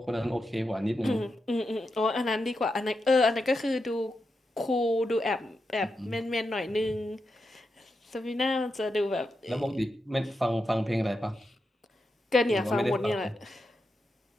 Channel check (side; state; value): both; normal; correlation 0.87